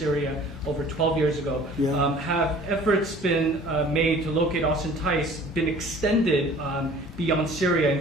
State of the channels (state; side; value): normal; both; correlation 0.49